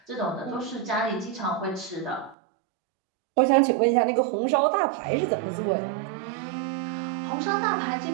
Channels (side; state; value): left; drops out; at 2.4 s